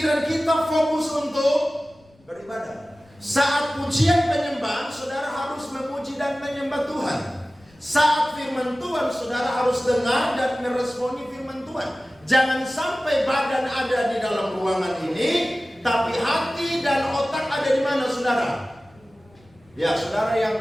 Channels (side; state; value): left; noise; rumble, 30 dB below the sound